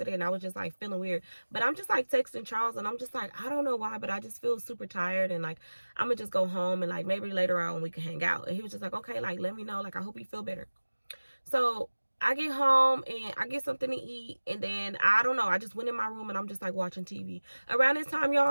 and I was just like feeling weird. But I'm just like texting Charles, and I'm just like, I don't know why, but I just feel super tired, and like I'm gonna just go home, and like maybe later on we can hang out. And he was just like, okay, like let me know, like I hope you feel better. So I get home and I get something to eat, and then I don't know, I just went in my room and I'm just like watching TV. Around this time,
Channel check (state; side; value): inverted; both; correlation -1.00